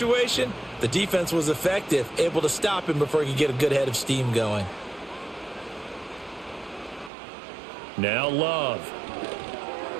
the defense was effective, able to stop him before he could get a good head of steam going. Now Love.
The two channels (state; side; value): drops out; left; at 7.1 s